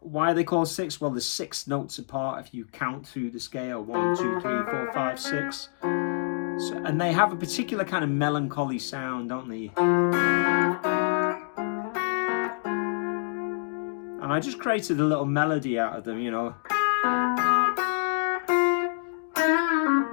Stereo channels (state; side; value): silent; right; digital silence